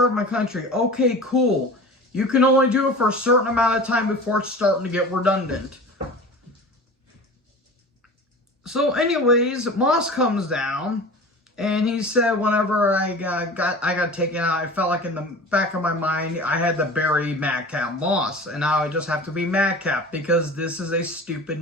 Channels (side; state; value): both; normal; correlation 0.37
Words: my country. Okay, cool. You can only do it for a certain amount of time before it's starting to get redundant. So anyways, Moss comes down, and he said whenever I got taken out, I felt like in the back of my mind, I had to bury Madcap Moss, and now I just have to be Madcap, because this is a stupid